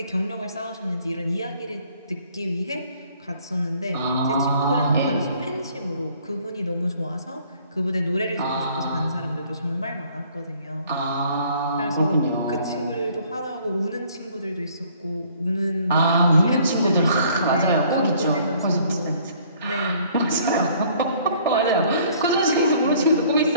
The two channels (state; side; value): inverted; both; correlation -0.58